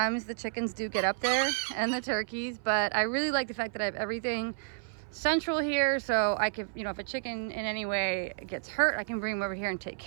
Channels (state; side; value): silent; left; 57 dB below the other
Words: the chickens do get up there and the turkeys, but I really like the fact that I have everything central here, so I can, if a chicken in any way gets hurt, I can bring them over here and take